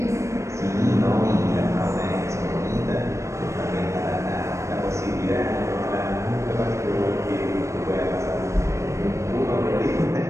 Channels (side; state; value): left; late; 0.14 ms